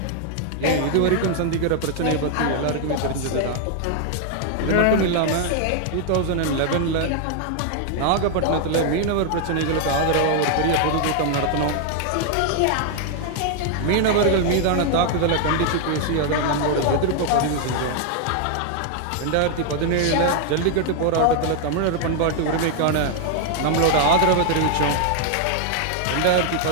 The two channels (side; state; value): both; different; correlation 0.00